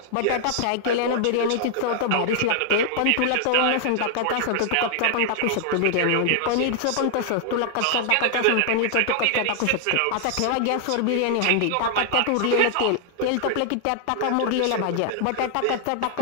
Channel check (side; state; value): both; different; correlation -0.01